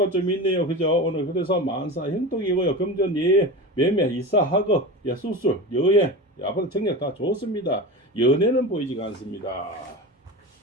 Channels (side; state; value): both; normal; correlation 0.27